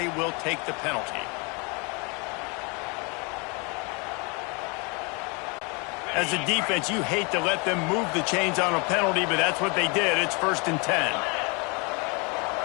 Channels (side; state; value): right; quieter; 31.4 dB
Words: will take the penalty. As a defense, you hate to let them move the chains on a penalty, but that's what they did. It's 1st and 10.